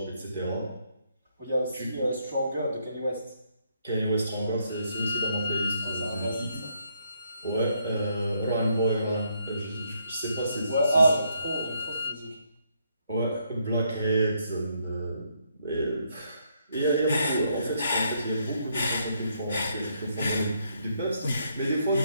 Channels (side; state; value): both; inverted; correlation -0.74